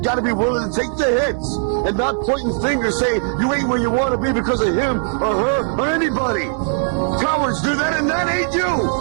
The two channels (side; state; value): left; silent; digital silence